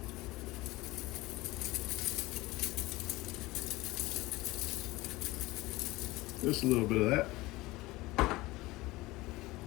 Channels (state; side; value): quieter; right; 20.2 dB